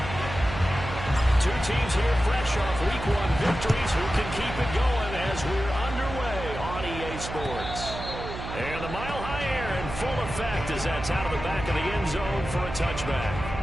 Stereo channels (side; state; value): right; noise; hum, 8 dB below the sound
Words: Teams here fresh off Week 1 victories who can keep it going as we're underway on EA Sports. And the Mile High Air in full effect as that's out of the back of the end zone for a touchback.